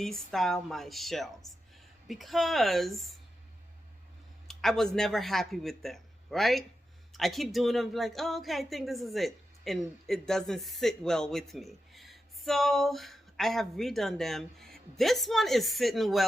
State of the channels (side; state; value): both; normal; correlation 0.89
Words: my shelves because I was never happy with them, right? I keep doing them like, oh, okay, I think this is it. And it doesn't sit well with me. So I have redone them. This one is sitting